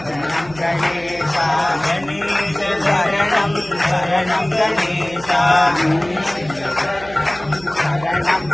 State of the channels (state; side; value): noise; right; hum, 19 dB below the sound